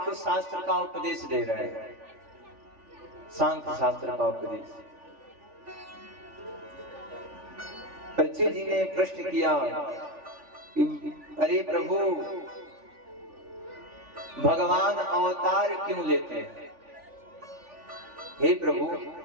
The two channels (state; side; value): late; left; 3.4 ms